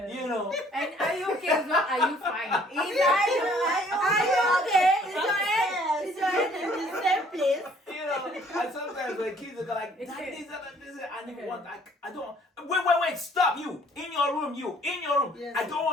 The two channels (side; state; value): both; normal; correlation 0.59